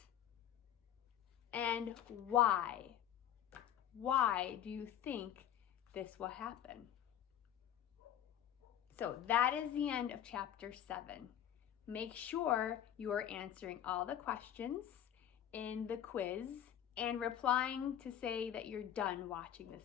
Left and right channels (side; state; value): right; quieter; 10.5 dB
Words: And why? Why do you think this will happen? So that is the end of chapter 7. Make sure you are answering all the questions in the quiz and replying to say that you're done watching